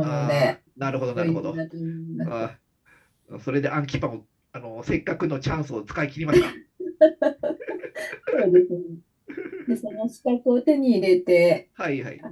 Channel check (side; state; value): both; identical; correlation 1.00